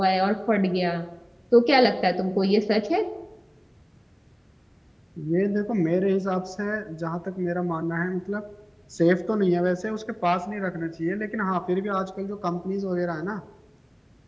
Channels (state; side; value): identical; both; correlation 1.00